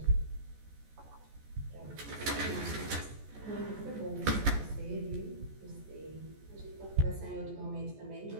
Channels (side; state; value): left; late; 14 ms